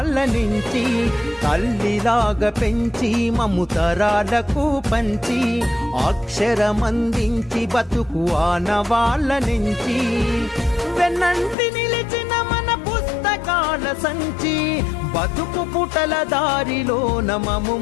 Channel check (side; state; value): right; drops out; at 11.6 s